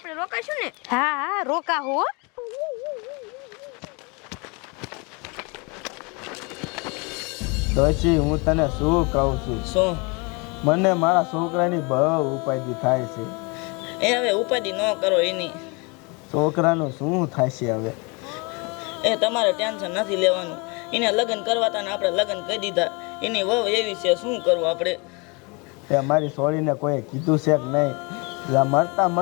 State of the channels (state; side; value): quieter; right; 30.1 dB